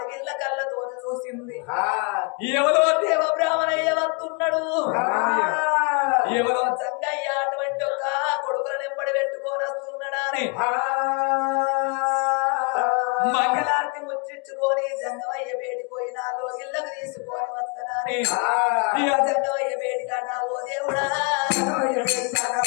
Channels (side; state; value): right; quieter; 34.3 dB